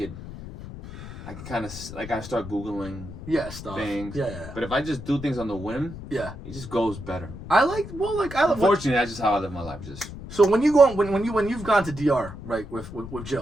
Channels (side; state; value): left; noise; rumble, 12 dB below the sound